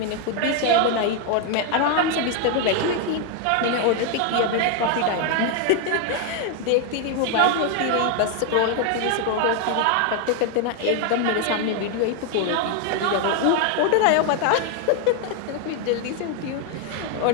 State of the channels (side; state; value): both; different; correlation 0.01